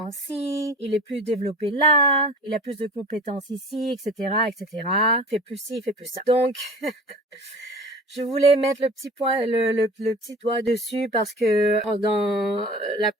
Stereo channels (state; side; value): normal; both; correlation 0.40